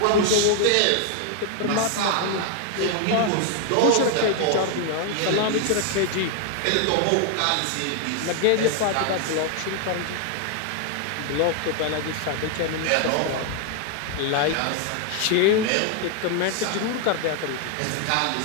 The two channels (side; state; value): both; different; correlation 0.00